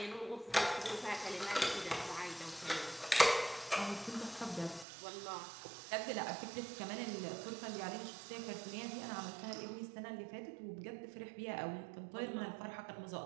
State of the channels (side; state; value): left; drops out; at 4.9 s